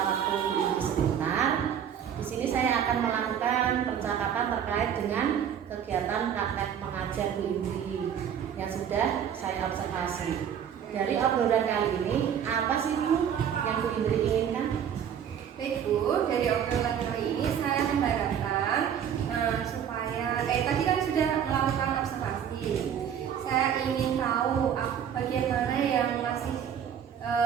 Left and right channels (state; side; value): quieter; left; 8.7 dB